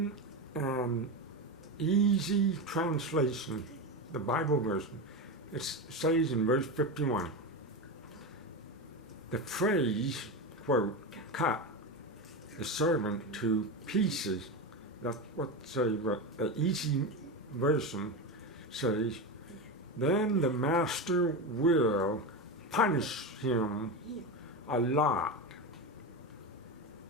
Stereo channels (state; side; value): normal; both; correlation 0.18